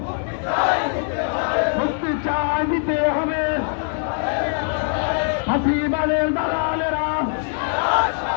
মুক্তি চাই দিতে হবে। ফাঁসিবাদের দালালেরা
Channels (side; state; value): right; silent; 62 dB below the other